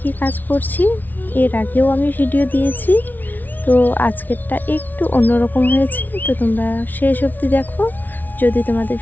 কি কাজ করছি এর আগেও আমি ভিডিও দিয়েছি, তো আজকেরটা একটু অন্যরকম হয়েছে। তো তোমরা শেষ অবধি দেখো। যদি তোমাদের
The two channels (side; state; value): right; late; 0.083 ms